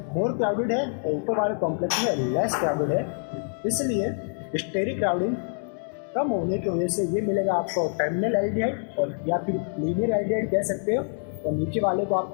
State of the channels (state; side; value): silent; right; 61 dB below the other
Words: मोर क्राउडेड है और ऊपर वाले कॉम्प्लेक्स में लेस क्राउडेड है। इसलिए स्टेरिक क्राउडिंग कम होने की वजह से ये मिलेगा आपको टर्मिनल एल्डिहाइड, और या फिर लीनियर एल्डिहाइड कह सकते हो, और नीचे वाले को आप